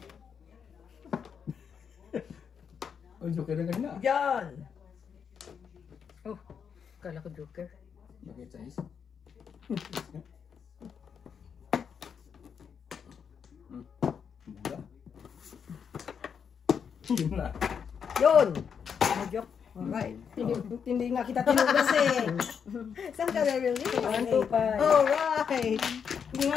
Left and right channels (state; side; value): quieter; right; 7.0 dB